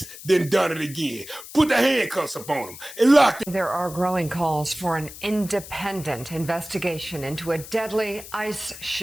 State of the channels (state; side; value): noise; left; hiss, 14 dB below the sound